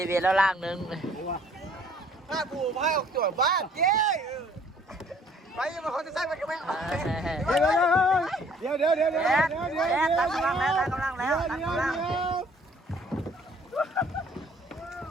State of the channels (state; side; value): normal; both; correlation 0.59